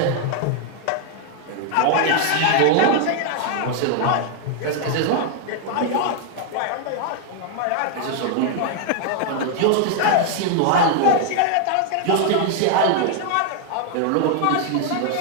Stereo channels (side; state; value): both; different; correlation 0.00